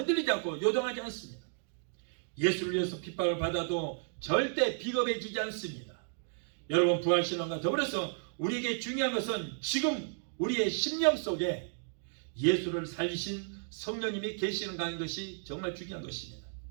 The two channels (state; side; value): silent; left; digital silence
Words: 않고 요동하지 않습니다. 예수를 위해서 핍박을 받아도 절대 비겁해지지 않습니다. 여러분, 부활신앙과 더불어서 우리에게 중요한 것은 지금 우리의 심령 속에 예수를 살리신 성령님이 계시는 것이 정말 중요한 것입니다.